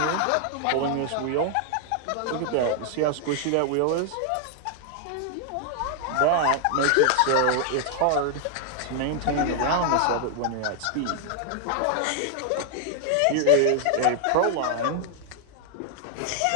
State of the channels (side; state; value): both; different; correlation 0.00